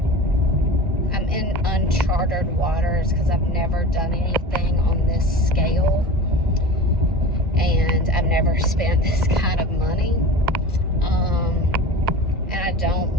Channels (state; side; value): normal; both; correlation 0.34